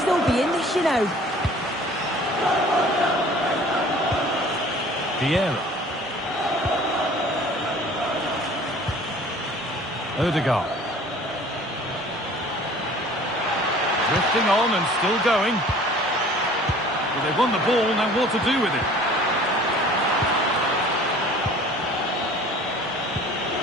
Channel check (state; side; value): normal; both; correlation 0.48